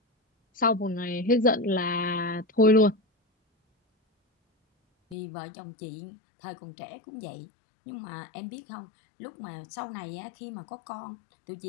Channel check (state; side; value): drops out; right; at 5.2 s